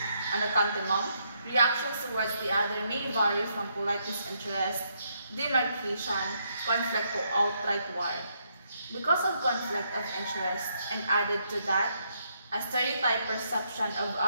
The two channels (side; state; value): both; inverted; correlation -0.75